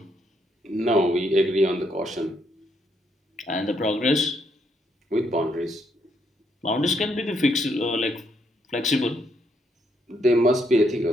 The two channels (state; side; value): normal; both; correlation 0.75